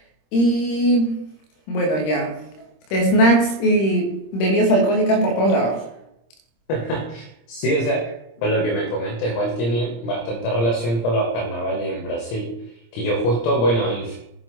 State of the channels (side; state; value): right; late; 26 ms